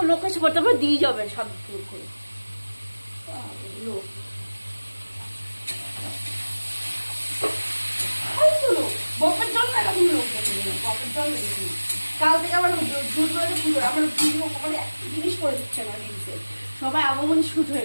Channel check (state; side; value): inverted; both; correlation -1.00